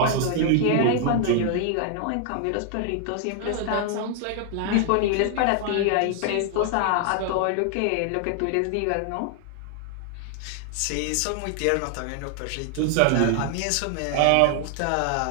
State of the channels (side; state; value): both; different; correlation 0.00